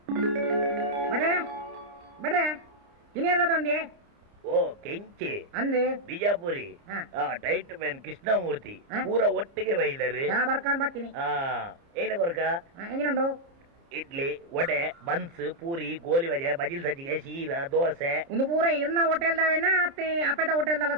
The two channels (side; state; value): left; late; 30 ms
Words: ಬಡ್ರೆ ಇನ್ನೇನದೊಂಡಿ ಓ ಕೆಂಚೆ ಅಂದೆ ಬಿಜಾಪುರಿ ಟೈಟ್ ಮ್ಯಾನ್ ಕೃಷ್ಣಮೂರ್ತಿ ಪೂರ ಒಟ್ಟಿಗೆ ಬೈದರೆ ಬರ್ಕೊಂಡ್ ಬರ್ತೀನಿ ಏನ ಕೊರಕ ಎಂಜಿನುಂಡು ಇಡ್ಲಿ ವಡೆ ಬನ್ಸ್ ಪೂರಿ ಗೋಲಿ ಬಜೆ ಬಜಿಲ್ ಸಜ್ಜಿಗೆ ಶೀರಾ ದೋಸೆ ಒಂದು ಪೂರ ಇರ್ನ ಹೋಟೆಲ್ದಾವೇನ ಅಪ್ಪೆದ ಹೋಟೆಲ್ದಲ್ಲ